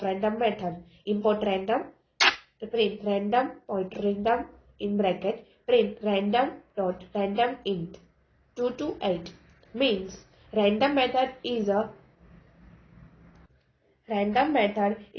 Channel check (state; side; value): identical; both; correlation 1.00